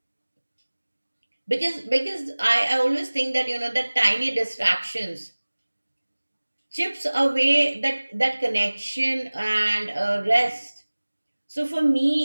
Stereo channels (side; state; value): both; inverted; correlation -1.00